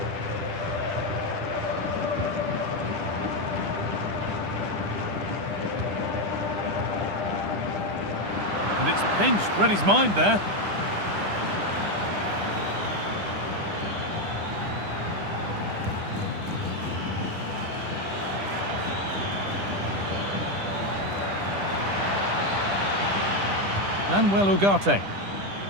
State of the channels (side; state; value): left; late; 10 ms